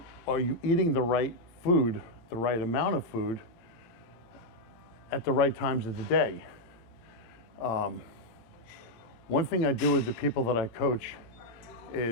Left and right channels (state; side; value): late; right; 18 ms